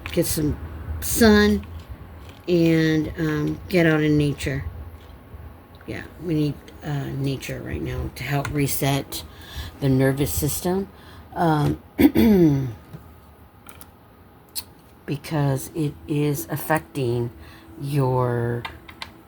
get some sun and get out in nature. Yeah, we need nature right now to help reset the nervous system. Because it is affecting your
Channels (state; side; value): identical; both; correlation 1.00